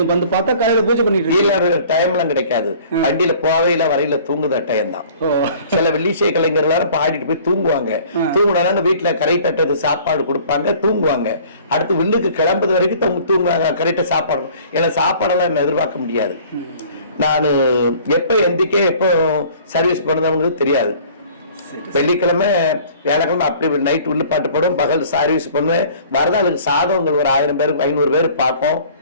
வந்து பார்த்தா காலையில பூஜை பண்ணிட்டு டைம் எல்லாம் கிடைக்காது. வண்டியில போவையில வரையில தூங்குத டைம் தான். சில வெள்ளிசை கலைஞர்கள் பாடிட்டு போய் தூங்குவாங்க. தூங்குனாங்க வீட்டுல கரை தட்டது சாப்பாடு கொடுப்பாங்க, தூங்குவாங்க. அடுத்து வில்லுக்கு கிளம்புறது வரைக்கும் தூங்குவாங்க. கரெக்டா சாப்பாடு, ஏன்னா சாப்பாடெல்லாம் என்ன எதிர்பார்க்க முடியாது. நான் எப்ப எந்திக்க எப்போ சர்வீஸ் பண்ணவங்களுக்கு தெரியாது. வெள்ளிக்கிழமை வியாழக்கிழமை அப்படி நைட் உள்ள பாட்டு போடும், பகல் சர்வீஸ் பண்ணுவேன். வரதாளுக்கு சாதவங்கள் ஒரு 1000 பேருக்கு 500 பேர் பார்ப்போம்.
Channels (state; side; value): inverted; both; correlation -0.51